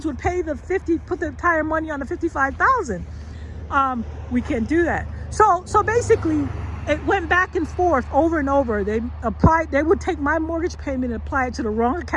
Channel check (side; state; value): both; identical; correlation 1.00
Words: would pay the 50, put the entire money on the 55,000? We can't do that. So basically, it went back and forth over and over. They would take my mortgage payment and apply it to the wrong